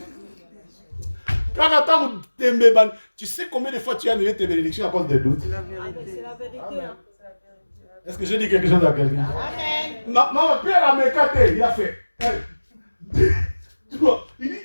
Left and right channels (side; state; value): both; inverted; correlation -1.00